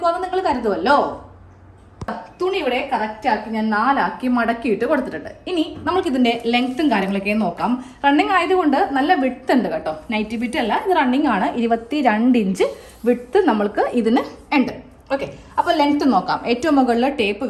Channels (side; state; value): both; identical; correlation 1.00